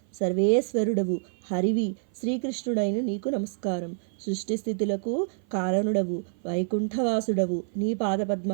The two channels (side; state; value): left; silent; 55 dB below the other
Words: సర్వేశ్వరుడవు, హరివి, శ్రీకృష్ణుడైన నీకు నమస్కారం. సృష్టి స్థితులకు కారణుడవు, వైకుంఠవాసుడవు, నీ